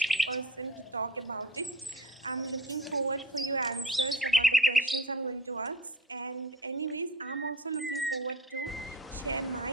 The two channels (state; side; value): normal; both; correlation 0.36